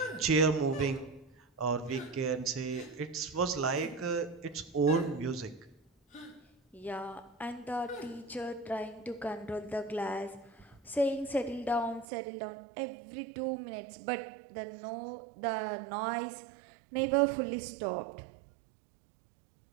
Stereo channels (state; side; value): drops out; left; at 12.1 s